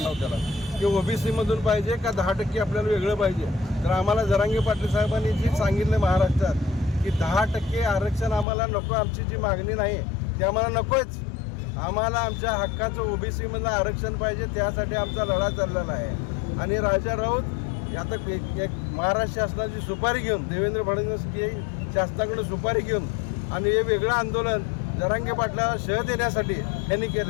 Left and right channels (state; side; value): drops out; right; at 8.5 s